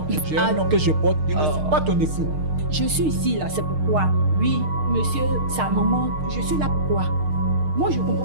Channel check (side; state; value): left; late; 6.5 ms